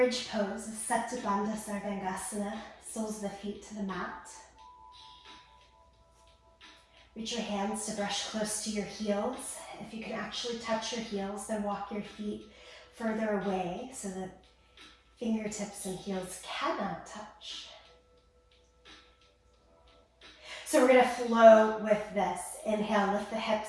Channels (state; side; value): identical; both; correlation 1.00